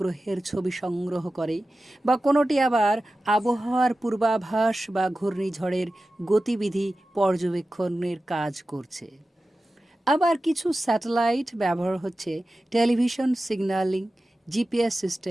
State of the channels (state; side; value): normal; both; correlation 0.94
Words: ছবি সংগ্রহ করে, বা কোনোটি আবার আবহাওয়ার পূর্বাভাস বা ঘূর্ণিঝড়ের গতিবিধি পর্যবেক্ষণের কাজ করছে। আবার কিছু স্যাটেলাইট ব্যবহার হচ্ছে টেলিভিশন সিগন্যালিং, জিপিএস